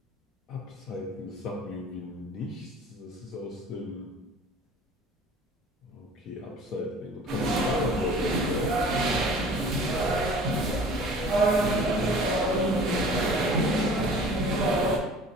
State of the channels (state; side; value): normal; both; correlation 0.46